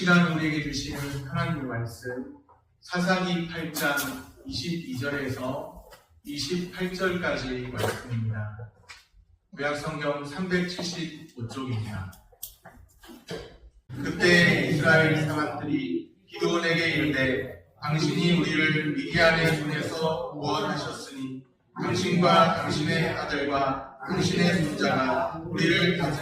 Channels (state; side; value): identical; both; correlation 1.00